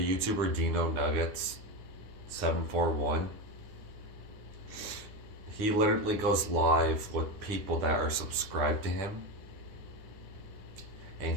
Dino Nuggets 741, he literally goes live with people that are subscribed to him, and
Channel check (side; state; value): left; late; 9.5 ms